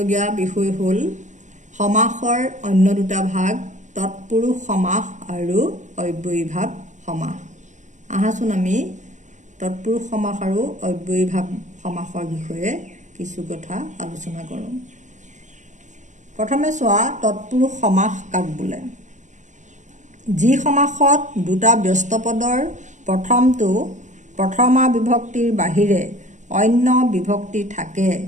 বিষয় হ'ল সমাসৰ অন্য দুটা ভাগ, তৎপুৰুষ সমাস আৰু অব্যয়ীভাৱ সমাস। আহাচোন আমি তৎপুৰুষ সমাস আৰু অব্যয়ীভাৱ সমাসৰ বিষয়ে কিছু কথা আলোচনা কৰোঁ। প্ৰথমে চোৱা, তৎপুৰুষ সমাস কাক বোলে? যি সমাসত দুটা ব্যস্ত পদৰ প্ৰথমটো প্ৰথমা বিভক্তিৰ বাহিৰে অন্য বিভক্তি থাকে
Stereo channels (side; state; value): left; late; 0.35 ms